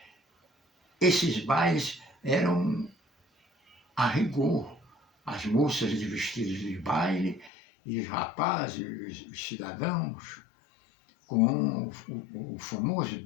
esses bailes eram a rigor. As moças de vestidos de baile e os rapazes, os cidadãos, com o famoso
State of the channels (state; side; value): drops out; right; at 7.5 s